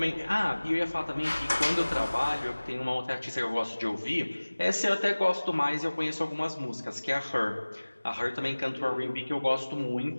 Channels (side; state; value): both; inverted; correlation -1.00